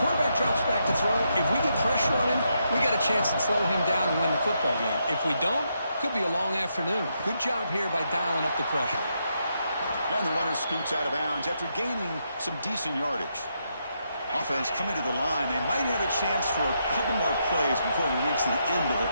quarterback drops back to throw, if we get pressure on him, we got a chance to slow him down and win the football game. If we don't, could be a long afternoon. Good job here by dialing up the pressure. And the runner scoots out of bounds after gaining some decent yardage. Offense coming to the line. They might have a chance for a couple more plays before we reach the end of the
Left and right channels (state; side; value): inverted; both; correlation -0.80